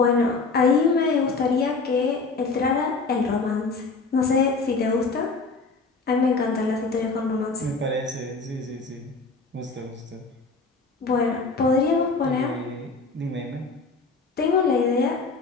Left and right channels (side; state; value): right; quieter; 4.1 dB